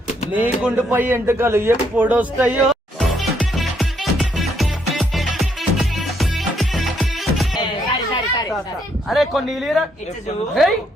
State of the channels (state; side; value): normal; both; correlation 0.73